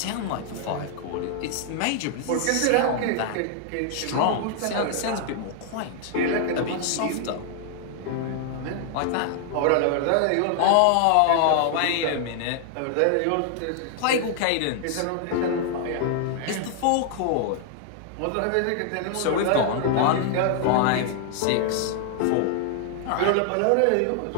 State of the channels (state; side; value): different; both; correlation 0.00